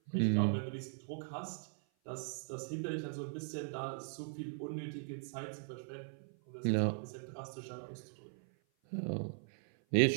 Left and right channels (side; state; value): left; silent; 52 dB below the other